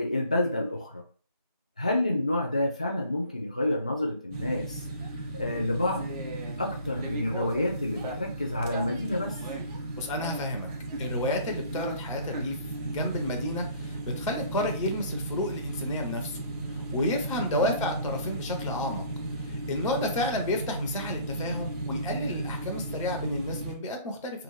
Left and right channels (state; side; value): inverted; both; correlation -0.54